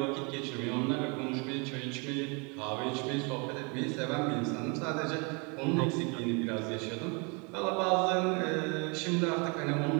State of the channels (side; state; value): left; quieter; 32.2 dB